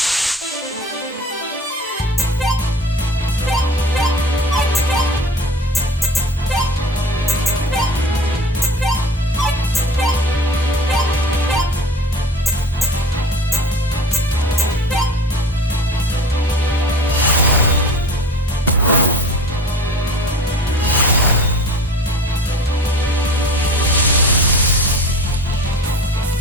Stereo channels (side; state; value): both; normal; correlation 0.39